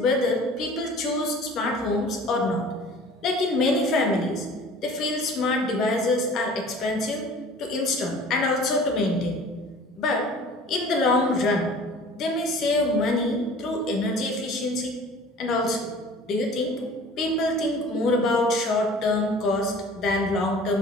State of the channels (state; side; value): normal; both; correlation 0.46